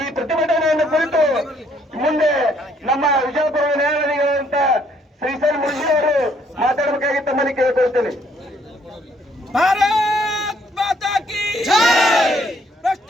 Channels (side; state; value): both; normal; correlation 0.66